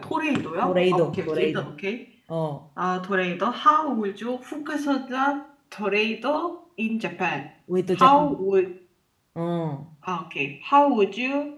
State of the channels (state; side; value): identical; both; correlation 1.00